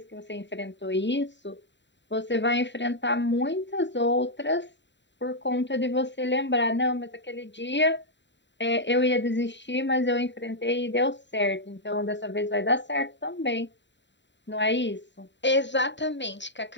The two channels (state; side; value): late; right; 0.52 ms